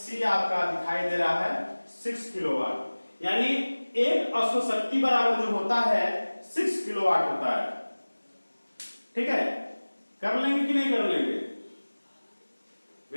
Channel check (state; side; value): inverted; both; correlation -1.00